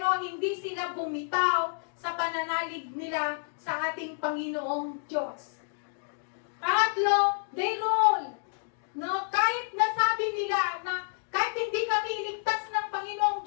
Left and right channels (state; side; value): silent; right; digital silence